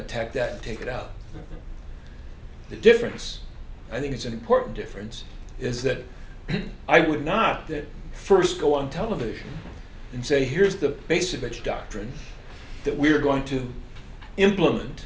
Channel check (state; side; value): identical; both; correlation 1.00